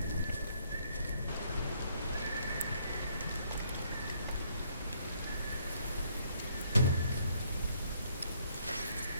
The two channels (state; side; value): inverted; both; correlation -0.68